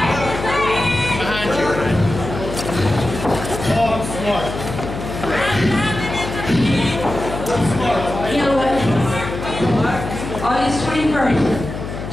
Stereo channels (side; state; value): left; noise; hum, 7 dB below the sound